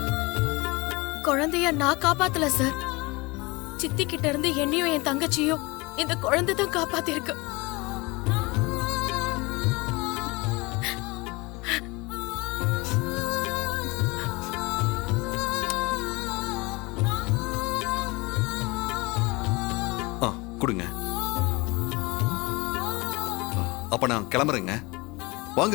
குழந்தைய நான் காப்பாத்தல சார். சித்தி கிட்ட இருந்து என்னையும் என் தங்கச்சியும் இந்த குழந்தை தான் காப்பாத்திருக்கு. ஆ, கொடுங்க. அப்ப நான் கிளம்புறேங்க.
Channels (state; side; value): quieter; right; 24.8 dB